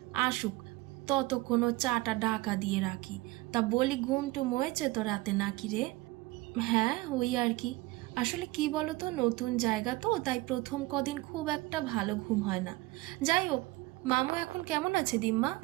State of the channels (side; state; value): left; quieter; 20.4 dB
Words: আসুক ততক্ষণ চাটা ঢাকা দিয়ে রাখি। তা বলি, ঘুম টুম হয়েছে তো রাতে নাকি রে? হ্যাঁ ওই আর কি, আসলে কি বলতো, নতুন জায়গা তো, তাই প্রথম কদিন খুব একটা ভালো ঘুম হয় না। যাই হোক, মামু এখন কেমন আছে দিম্মা?